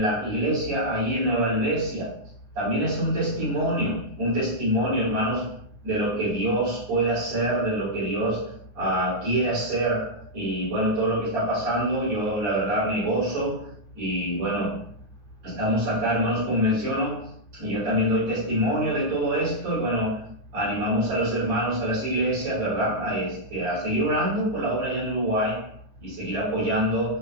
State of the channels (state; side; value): late; left; 9.5 ms